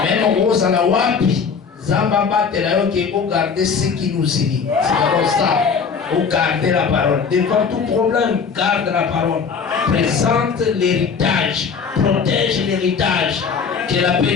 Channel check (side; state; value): right; quieter; 5.9 dB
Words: Même en gros, à la wapi, Zamba batte la yo qui faut garder ce qui nous unit. C'est comme ça. Faut garder la parole. Devant tout problème, garde la parole. Présente l'héritage. Protège l'héritage. Que la paix